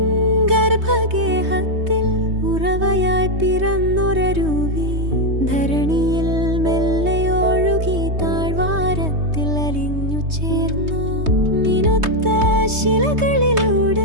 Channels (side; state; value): left; late; 3.2 ms